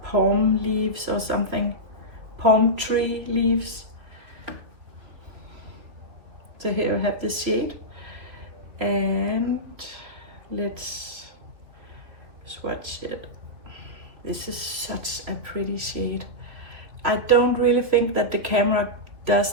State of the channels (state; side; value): late; left; 2.8 ms